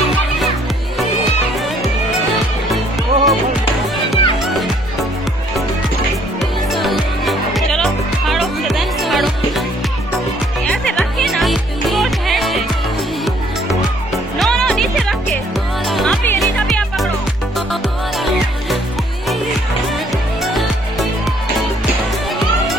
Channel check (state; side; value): normal; both; correlation 0.63